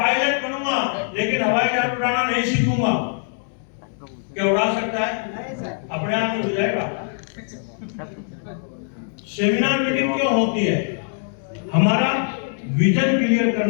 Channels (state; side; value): silent; right; 64 dB below the other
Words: बनूंगा लेकिन हवाई जहाज उड़ाना नहीं सीखूंगा। क्या उड़ा सकता है? अपने आप में हो जाएगा। सेमिनार मीटिंग क्यों होती है? हमारा विजन क्लियर